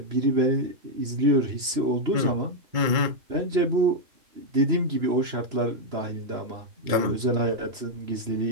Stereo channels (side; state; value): left; late; 3.0 ms